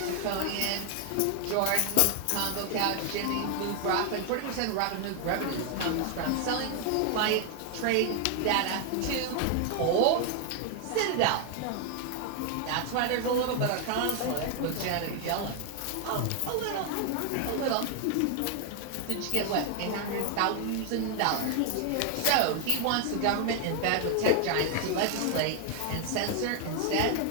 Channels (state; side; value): different; both; correlation 0.00